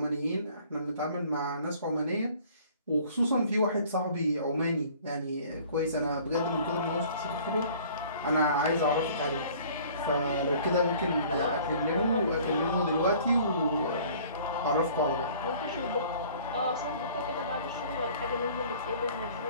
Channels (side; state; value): both; inverted; correlation -0.52